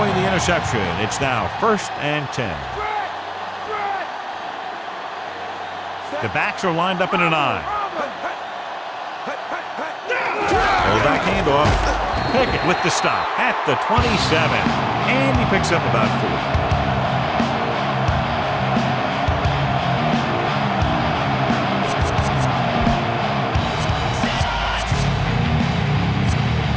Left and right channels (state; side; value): identical; both; correlation 1.00